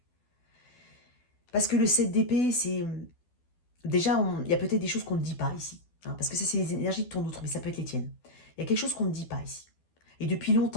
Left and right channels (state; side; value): late; right; 12 ms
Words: Parce que le 7 d'épée, c'est... Déjà, il y a peut-être des choses qu'on ne dit pas ici. Hein, parce que ça, c'est les énergies de ton autre, mais ça peut être les tiennes. Il y a quelque chose qu'on ne dit pas ici. Et depuis